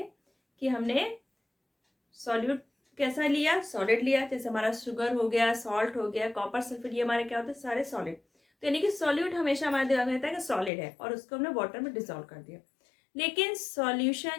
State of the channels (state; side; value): drops out; right; at 10.7 s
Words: कि हमने सॉल्यूट कैसा लिया, सॉलिड लिया। जैसे हमारा शुगर हो गया, सॉल्ट हो गया, कॉपर सल्फेट, ये हमारे क्या होते हैं, सारे सॉलिड। तो यानी कि सॉल्यूट हमेशा हमारे दिमाग में रहता है कि सॉलिड है और उसको हमने वाटर में डिसॉल्व कर दिया। लेकिन